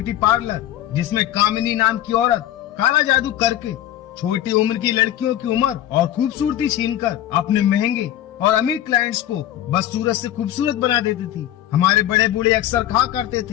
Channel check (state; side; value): quieter; right; 12.5 dB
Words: पार्लर जिसमें कामिनी नाम की औरत काला जादू करके छोटी उम्र की लड़कियों की उम्र और खूबसूरती छीनकर अपने महंगे और अमीर क्लाइंट्स को बस सूरत से खूबसूरत बना देती थी। हमारे बड़े बूढ़े अक्सर कहा करते